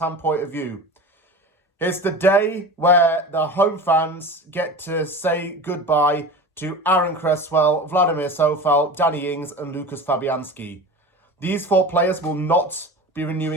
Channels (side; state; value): both; normal; correlation 0.32